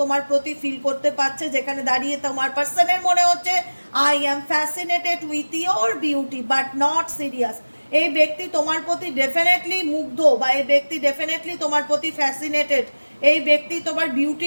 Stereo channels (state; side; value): inverted; both; correlation -1.00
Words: তোমার প্রতি ফিল করতে পারছে, যেখানে দাঁড়িয়ে তোমার পার্সনের মনে হচ্ছে I am fascinated with your beauty but not serious. এই ব্যক্তি তোমার প্রতি ডেফিনেটলি মুগ্ধ, বা এই ব্যক্তি ডেফিনেটলি তোমার প্রতি ফ্যাসিনেটেড, এই ব্যক্তি তোমার